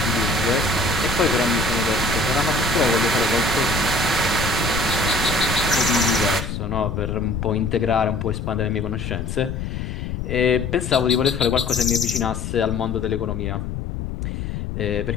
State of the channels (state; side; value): noise; left; rumble, 5 dB below the sound